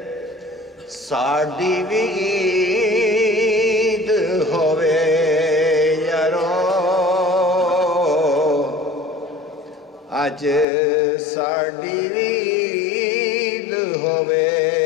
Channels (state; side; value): drops out; right; at 10.7 s